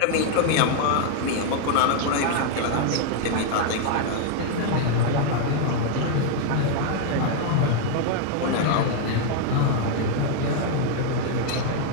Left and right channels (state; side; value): different; both; correlation 0.00